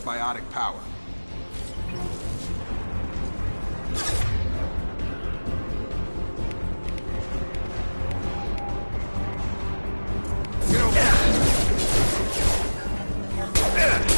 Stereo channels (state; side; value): inverted; both; correlation -1.00